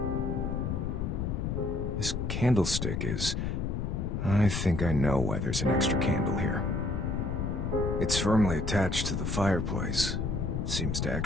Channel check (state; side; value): noise; left; rumble, 1 dB below the sound